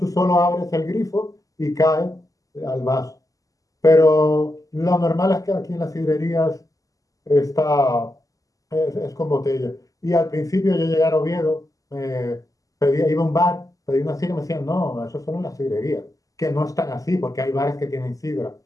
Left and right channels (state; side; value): late; right; 0.17 ms